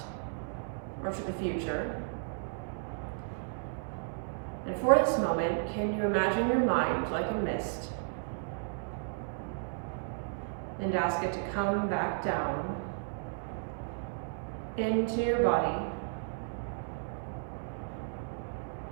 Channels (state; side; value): silent; left; digital silence